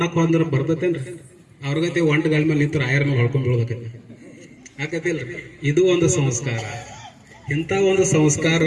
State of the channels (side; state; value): both; identical; correlation 1.00